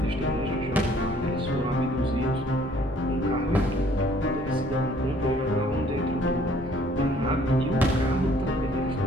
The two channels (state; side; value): normal; both; correlation 0.59